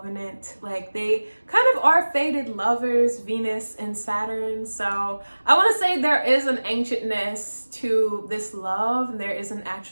Like, they kind of are fated lovers, Venus and Saturn. So I want to say there is an ancientness to this love, and there is an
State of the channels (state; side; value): inverted; both; correlation -1.00